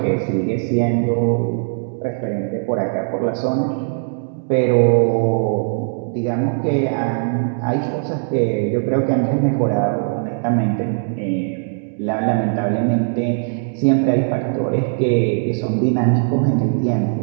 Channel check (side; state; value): left; silent; 66 dB below the other